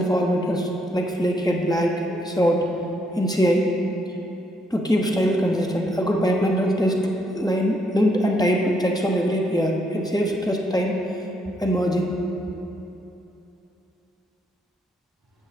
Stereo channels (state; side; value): normal; both; correlation 0.74